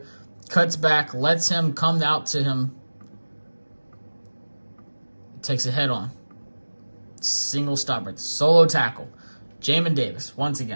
Cuts back. Lets him come out to him. Takes a head on. Single stop right there. Solo tackle. Jamin Davis, once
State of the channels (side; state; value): both; inverted; correlation -1.00